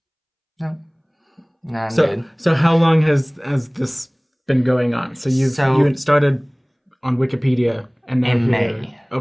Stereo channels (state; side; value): identical; both; correlation 1.00